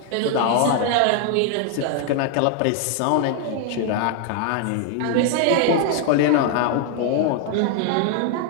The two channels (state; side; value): different; both; correlation 0.00